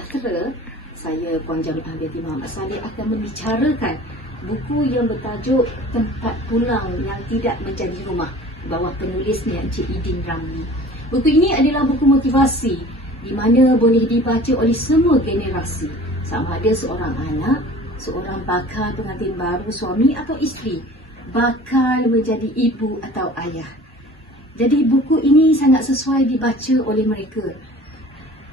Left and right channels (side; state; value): both; normal; correlation 0.45